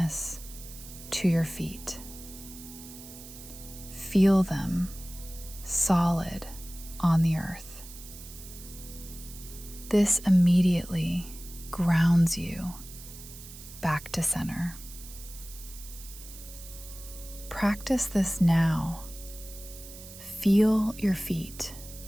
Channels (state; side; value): noise; right; hiss, 15 dB below the sound